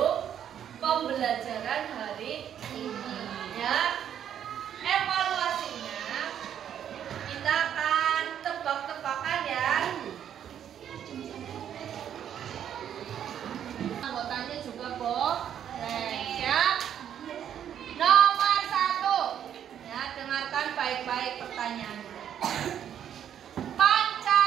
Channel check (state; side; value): quieter; left; 9.5 dB